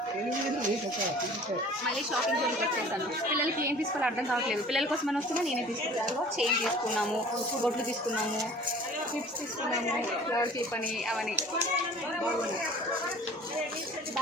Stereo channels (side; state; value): both; normal; correlation 0.47